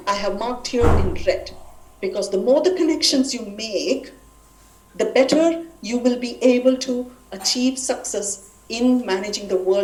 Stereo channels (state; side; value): identical; both; correlation 1.00